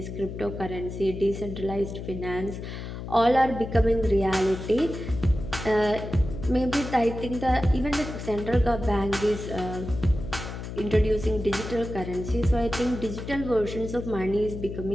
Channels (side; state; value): left; noise; hum, 8 dB below the sound